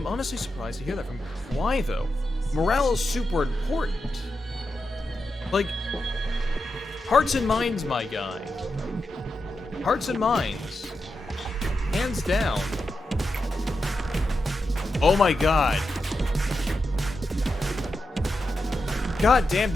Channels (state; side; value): normal; both; correlation 0.88